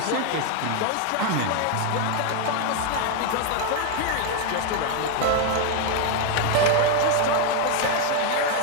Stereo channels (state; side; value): different; both; correlation 0.01